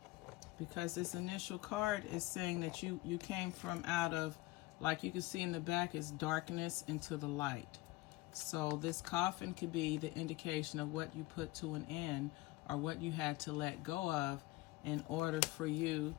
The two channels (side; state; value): right; quieter; 20.2 dB